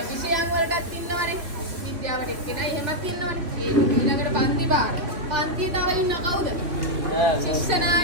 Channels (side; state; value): left; late; 3.0 ms